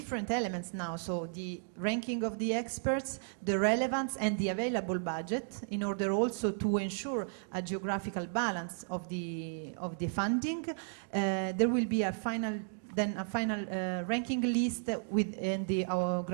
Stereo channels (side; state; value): left; silent; digital silence